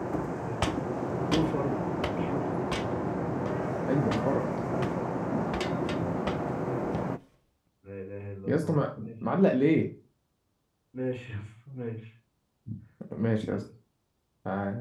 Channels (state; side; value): identical; both; correlation 1.00